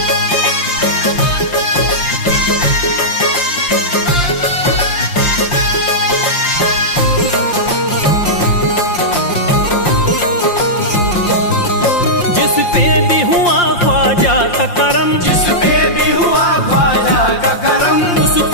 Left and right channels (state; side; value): late; right; 5.7 ms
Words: जिस पे भी हुआ ख्वाजा का करम, जिस पे भी हुआ ख्वाजा का करम,